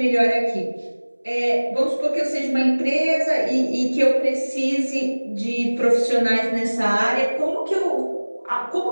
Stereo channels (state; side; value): inverted; both; correlation -1.00